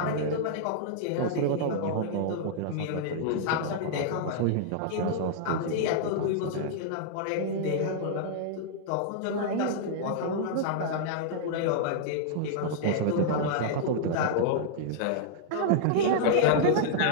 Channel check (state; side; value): different; both; correlation -0.01